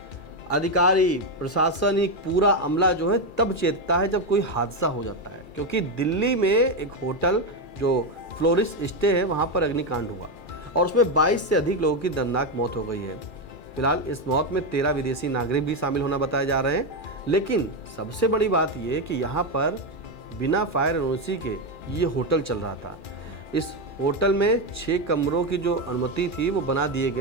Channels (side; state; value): right; late; 2.4 ms